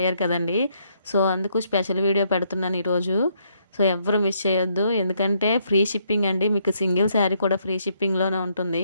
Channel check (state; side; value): inverted; both; correlation -0.73